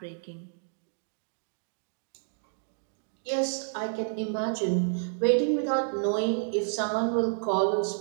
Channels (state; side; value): silent; left; digital silence